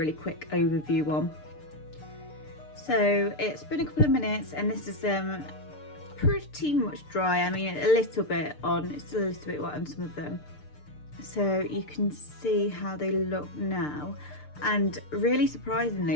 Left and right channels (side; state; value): right; late; 6.7 ms